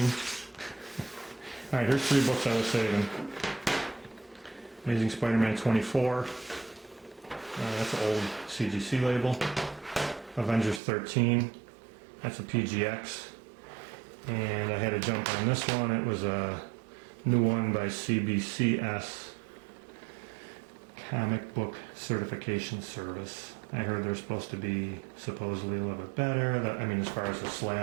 Alright, here's 3 books I was saving. Amazing Spider-Man 24. That's an old CGC label. Avengers 13. That's a PGX. And I had to jump on this one. It was a new one by CBCS, Comic Book Certification Service. I heard they're supposed to be supposedly a little bit better. I mean, as far as the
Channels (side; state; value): left; drops out; at 10.8 s